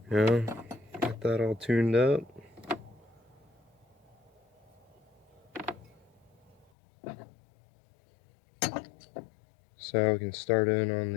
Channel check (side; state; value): right; drops out; at 6.7 s